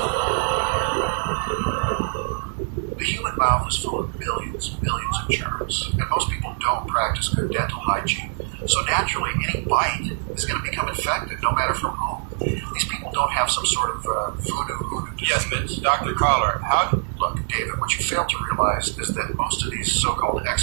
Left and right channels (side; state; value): left; silent; 63 dB below the other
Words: The human mouth is full of billions of germs, and most people don't practice good dental hygiene. So naturally, any bite is going to become infected, no matter from whom. These people don't have some sort of hoodoo disease. Yes, but Dr. Collar, how... Look, David, what you fail to realize is that most of these so-called